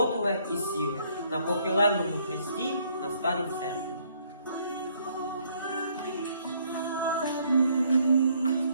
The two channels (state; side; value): inverted; both; correlation -0.66